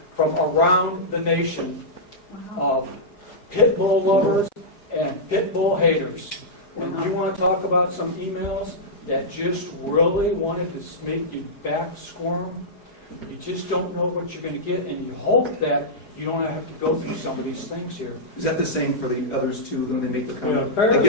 from around the nation of pit bull lovers and pit bull haters. And you want to talk about some emails that just really wanted to make you back squirm? You just don't know what you're going to get, and you hope that you don't have to go through some of these things here. Is that the same for the others too, when they make the Yeah, comment? I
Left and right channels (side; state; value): right; late; 4.8 ms